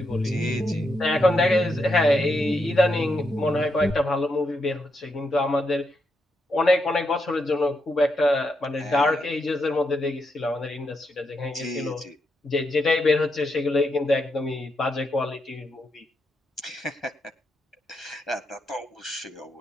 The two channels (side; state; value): both; normal; correlation 0.82